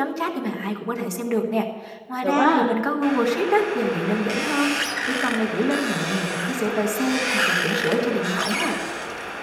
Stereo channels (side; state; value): both; identical; correlation 1.00